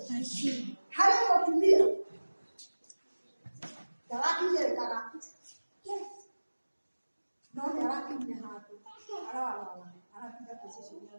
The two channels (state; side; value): inverted; both; correlation -1.00